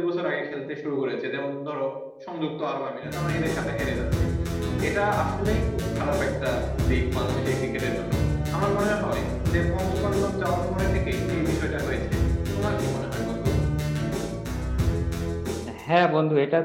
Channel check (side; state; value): both; identical; correlation 1.00